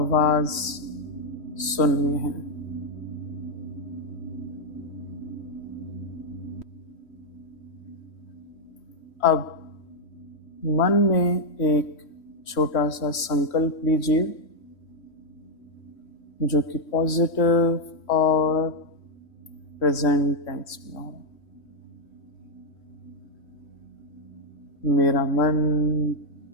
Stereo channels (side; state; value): right; late; 3.1 ms